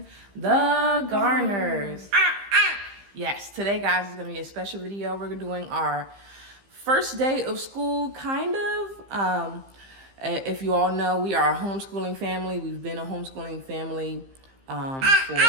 the Garners. Yes, today, guys, is going to be a special video. We're doing our first day of school, kind of. If you all know, we are a homeschooling family. We've been a homeschooling family for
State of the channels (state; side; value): late; left; 15 ms